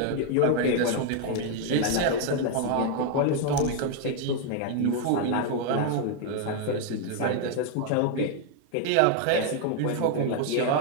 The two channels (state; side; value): different; both; correlation 0.01